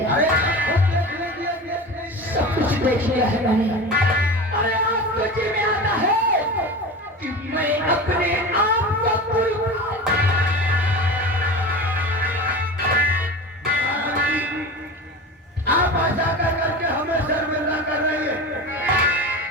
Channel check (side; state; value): both; normal; correlation 0.31